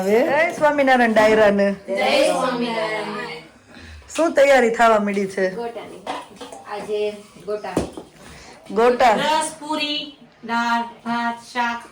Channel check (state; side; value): identical; both; correlation 1.00